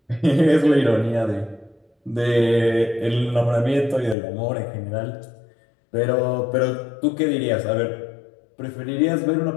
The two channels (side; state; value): right; drops out; at 4.2 s